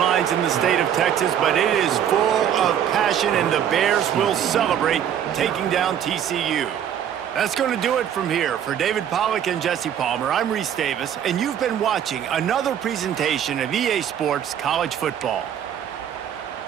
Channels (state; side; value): quieter; left; 9.5 dB